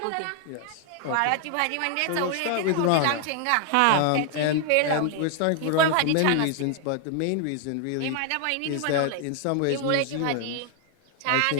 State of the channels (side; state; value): both; different; correlation 0.00